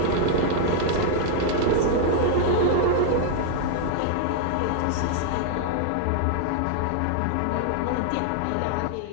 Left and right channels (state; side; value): different; both; correlation -0.01